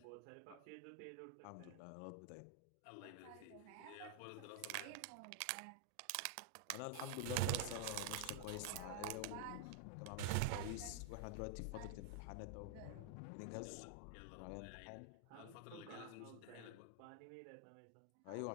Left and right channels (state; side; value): different; both; correlation -0.01